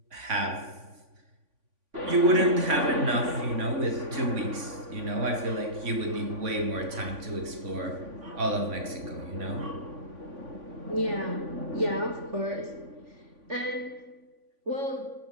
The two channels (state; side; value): late; left; 3.5 ms